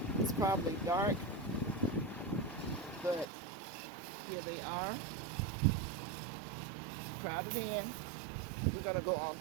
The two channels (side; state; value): left; drops out; at 3.2 s